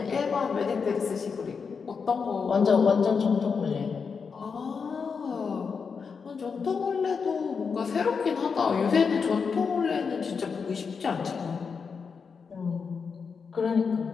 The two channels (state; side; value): quieter; right; 5.6 dB